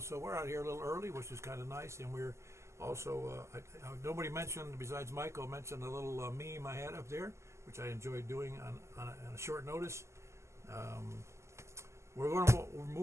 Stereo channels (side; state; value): left; late; 0.13 ms